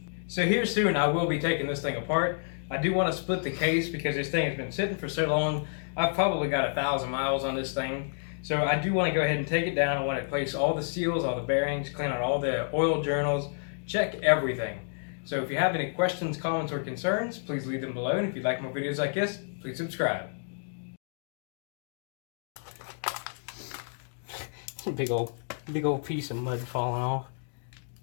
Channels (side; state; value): right; silent; digital silence